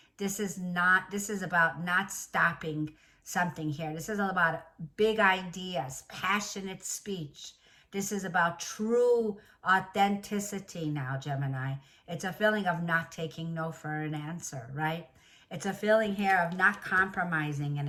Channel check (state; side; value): identical; both; correlation 1.00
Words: this is about not stopping something here. This is all about big ideas, passionate speech. This is about true authenticity now, Gemini. It's a feeling of not taking no for an answer, right? It's a feeling here of not compromising